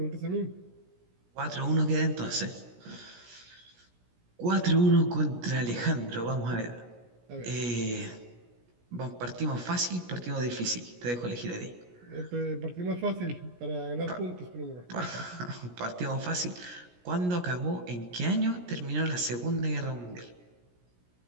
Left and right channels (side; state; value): left; late; 17 ms